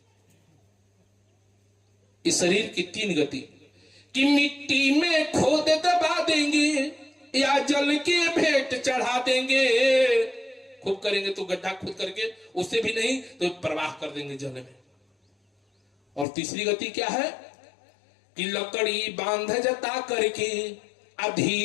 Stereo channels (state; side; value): drops out; right; at 16.2 s